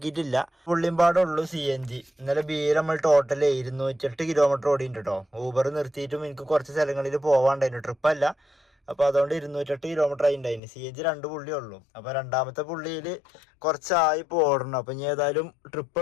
പുള്ളിമ്പാടുള്ളൂ CNG. ഇന്നലെ നമ്മൾ ടോട്ടൽ 208 കിലോമീറ്റർ ഓടിയിട്ടുണ്ട് കേട്ടോ. ഊബർ നിർത്തിയിട്ടും എനിക്ക് കുറച്ച് സ്ഥലങ്ങളിൽ പോവാണ്ടായിരുന്നു, ട്രിപ്പല്ല. അപ്പോൾ അതുകൊണ്ട് 208 കിലോമീറ്റർ ആയിട്ടുണ്ടായിരുന്നു. CNG 2 പുള്ളിയേ ഉള്ളൂ. അപ്പോൾ രണ്ടാമത്തെ പുള്ളിയിൽ കുറച്ചായി ഓടണം. അപ്പം ഇനി ഏതായാലും ട്രിപ്പ്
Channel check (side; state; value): right; drops out; at 10.6 s